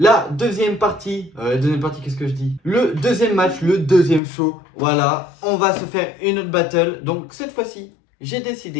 deuxième partie, qu'est-ce que je dis? Le deuxième match, le deuxième show, voilà. On va se faire une autre battle, donc cette fois-ci j'ai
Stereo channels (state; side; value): drops out; right; at 4.2 s